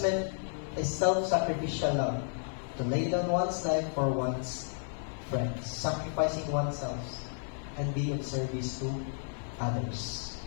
meant a self-sacrificial love, to lay down one's life for one's friends, sacrificing oneself and be of service to others.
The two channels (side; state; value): right; silent; 56 dB below the other